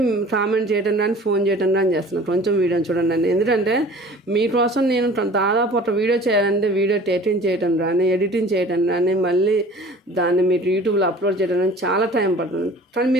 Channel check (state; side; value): normal; both; correlation 0.45